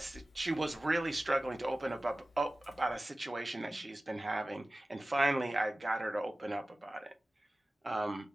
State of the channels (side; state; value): both; normal; correlation 0.97